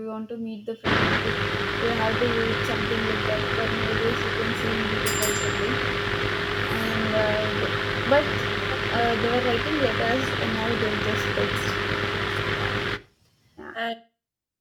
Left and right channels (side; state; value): both; identical; correlation 1.00